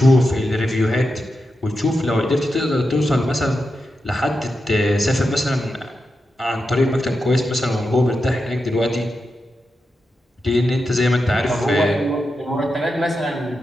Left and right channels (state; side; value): normal; both; correlation 0.88